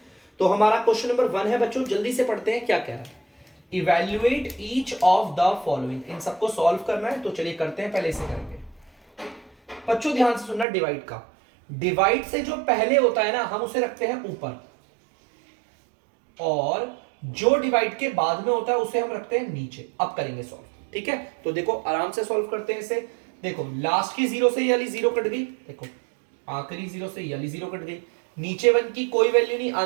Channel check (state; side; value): drops out; left; at 10.7 s